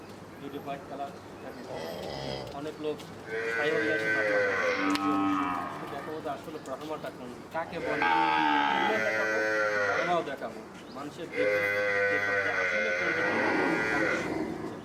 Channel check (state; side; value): identical; both; correlation 1.00